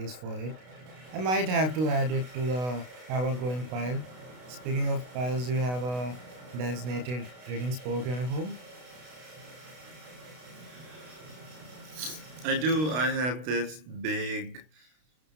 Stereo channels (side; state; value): left; late; 32 ms